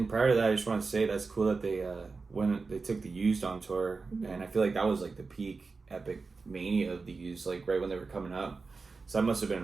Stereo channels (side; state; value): left; quieter; 4.3 dB